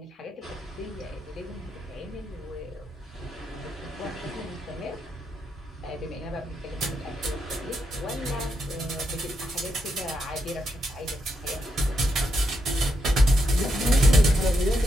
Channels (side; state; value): both; normal; correlation 0.82